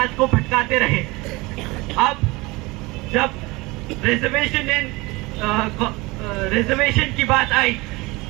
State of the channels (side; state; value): left; quieter; 23.2 dB